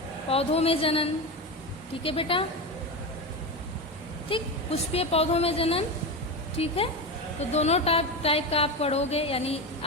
पौधों में जनन. ठीक है बेटा, ठीक, पुष्पीय पौधों में जनन. ठीक है. तो दोनों टाइप का आप पढ़ोगे, यानी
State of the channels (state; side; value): normal; both; correlation 0.19